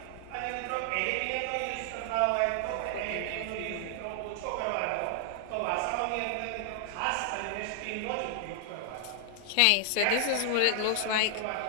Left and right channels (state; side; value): different; both; correlation 0.00